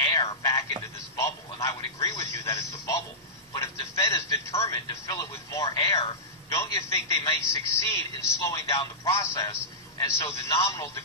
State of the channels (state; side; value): normal; both; correlation -0.15